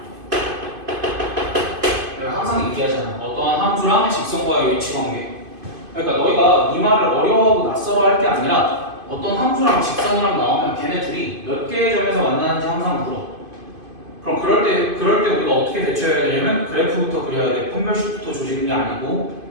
내가 항상 얘기하잖아. 어떠한 함수랑 직선과의 위치 관계. 그러니까 너희가 이 말을 어려워하고 낯설어 할 게 아니라 어떤 함수랑 직선이랑 나오면 걔네 둘이 몇 개의 점에서 만나는지 항상 물어. 그럼 그럴 때 우리가 어떻게 대처해야 되냐면 그래프부터 그려야 돼. 판별식부터 조지는 게 아니고.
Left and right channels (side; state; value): left; late; 2.5 ms